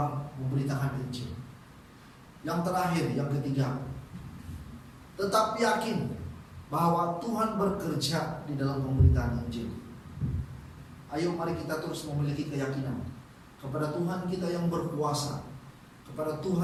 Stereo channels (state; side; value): identical; both; correlation 1.00